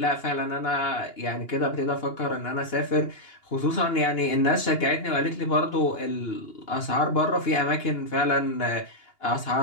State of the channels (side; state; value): right; late; 2.8 ms